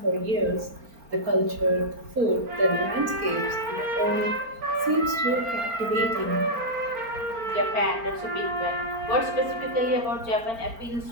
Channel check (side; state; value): left; late; 4.4 ms